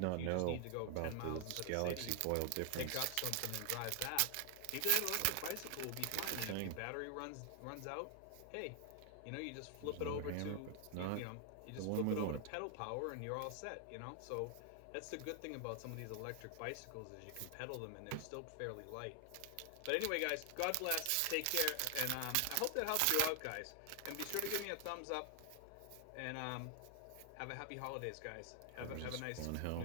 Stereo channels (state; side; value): different; both; correlation 0.00